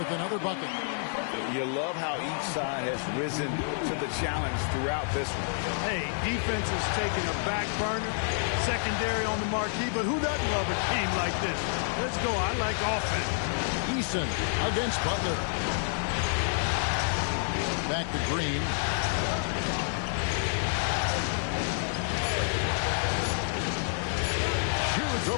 another bucket. You love how each side has risen to the challenge throughout this one. Hey, defense is taking a back burner, secondary on the marquee, but who doesn't love a game like this? Let's go. I like offense. Eason against Butler. Back to Green. Shoots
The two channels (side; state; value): right; silent; digital silence